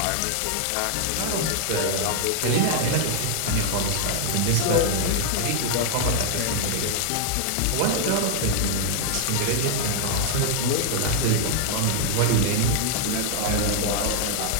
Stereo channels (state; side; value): different; both; correlation 0.00